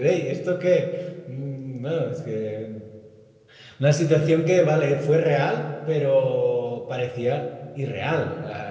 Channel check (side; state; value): both; identical; correlation 1.00